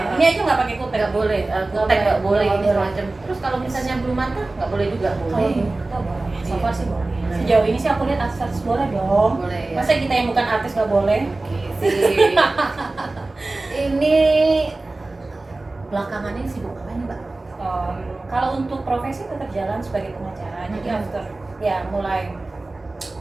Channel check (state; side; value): quieter; left; 3.1 dB